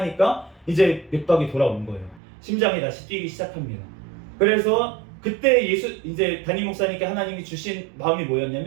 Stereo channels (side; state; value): left; drops out; at 2.2 s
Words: 이제 맥박이 돌아온 거예요. 심장이 다시 뛰기 시작합니다. 그래서 그때 이제 담임 목사님께 하나님이 주신 마음이